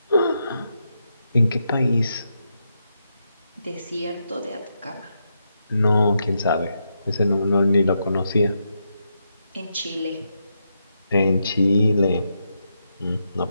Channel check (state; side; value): inverted; both; correlation -0.83